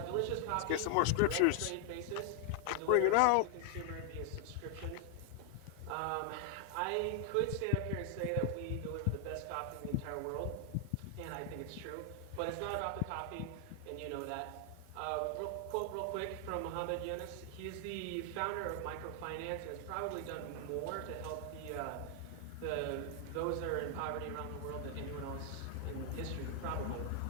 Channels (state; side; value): different; both; correlation 0.00